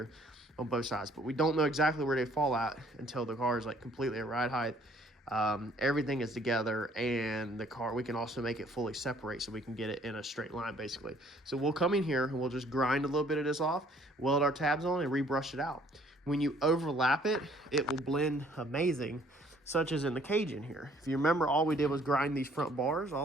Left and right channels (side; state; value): both; normal; correlation 0.60